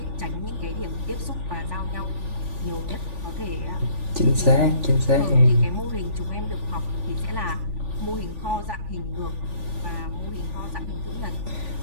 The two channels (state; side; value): late; left; 3.5 ms